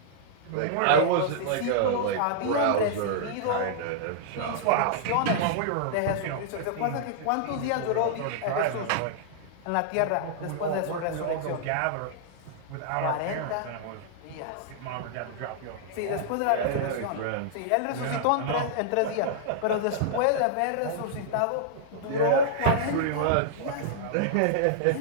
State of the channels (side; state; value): both; different; correlation -0.01